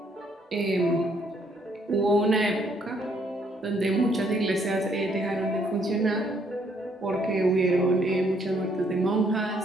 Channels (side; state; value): both; normal; correlation 0.69